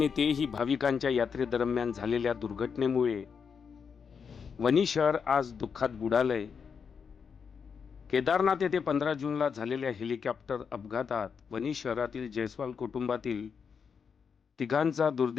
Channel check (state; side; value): quieter; right; 6.3 dB